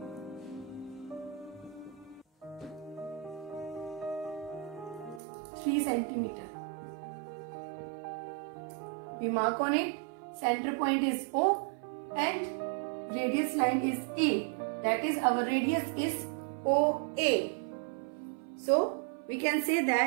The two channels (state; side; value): drops out; left; at 5.2 s